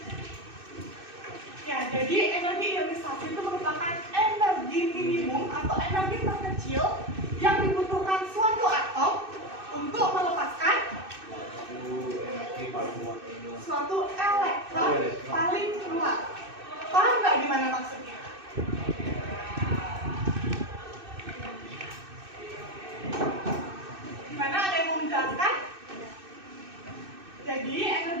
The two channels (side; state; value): left; late; 2.6 ms